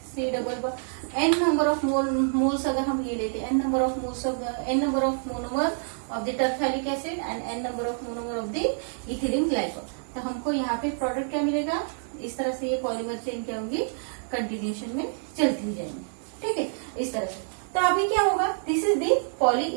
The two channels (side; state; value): left; silent; 60 dB below the other